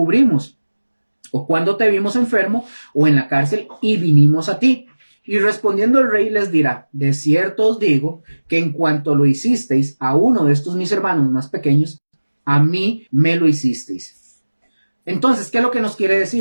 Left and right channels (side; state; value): both; inverted; correlation -1.00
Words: ¿O cuándo te vimos enfermo o en la cárcel y vinimos a ti? Y respondiendo el rey les dirá, de cierto os digo que en cuanto lo hicisteis a uno de estos mis hermanos más pequeños, a mí me lo hicisteis. Entonces, ¿qué es lo que nos quiere